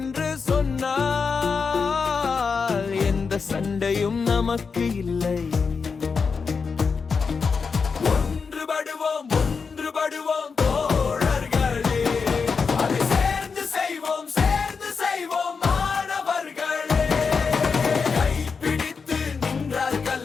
சொன்னால் எந்த சண்டையும் நமக்கு இல்லை. ஒன்றுபடுவோம் தோழர்களே, அதை சேர்ந்து செய்வோம் மாணவர்களே. கைப்பிடித்து நின்றால்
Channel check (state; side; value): quieter; right; 5.3 dB